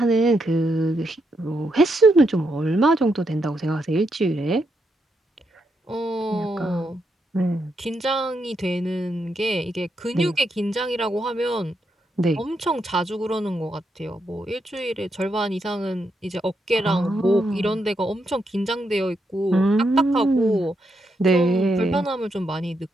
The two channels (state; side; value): normal; both; correlation 0.81